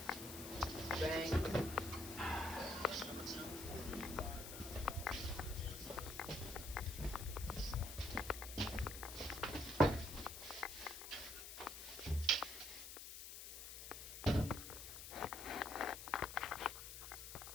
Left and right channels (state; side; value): noise; left; hiss, 9 dB below the sound